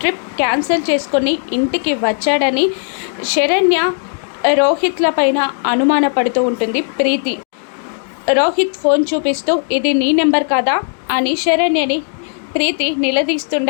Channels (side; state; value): right; silent; 65 dB below the other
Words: trip cancel చేసుకొని ఇంటికి వచ్చాడని శరణ్య రోహిత్ల పైన అనుమానపడుతూ ఉంటుంది ప్రీతి. రోహిత్ ఫోన్ చూపిస్తూ ఇది నీ నెంబర్ కాదా అని శరణ్యని ప్రీతి